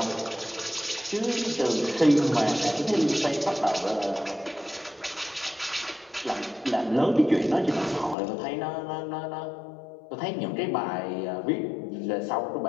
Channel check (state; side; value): drops out; right; at 8.2 s